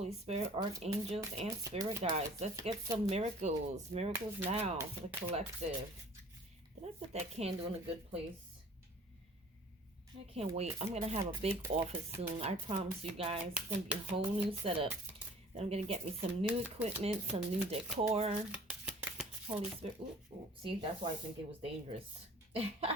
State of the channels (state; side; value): normal; both; correlation 0.49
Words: Spirit, archangels, and spirit guides. Let's get some miracles. Miracles now for the collective. Did I put that candle in a good place? I can't wait. I'm going to have a big office soon. I promise you guys. It's going to be a whole new setup. Then I'm going to get me some new equipment, some new decor. Holy Spirit. Ooh, ooh. See, that's why I think it was dangerous.